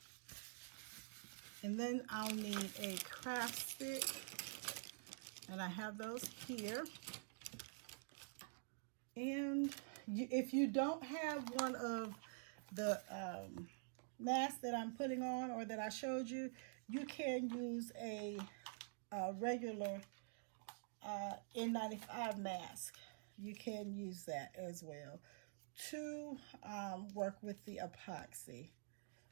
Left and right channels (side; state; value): left; silent; digital silence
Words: And then I'll need a craft stick. And I have those here. And if you don't have one of the masks that I'm putting on or that I showed you, you can use a regular N95 mask. You can use that as well to work with the epoxy.